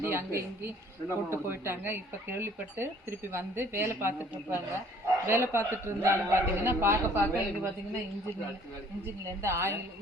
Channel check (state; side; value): normal; both; correlation 0.56